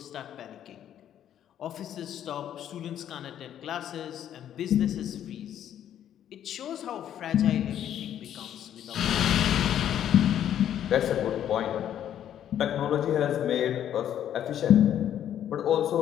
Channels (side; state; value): right; quieter; 10.5 dB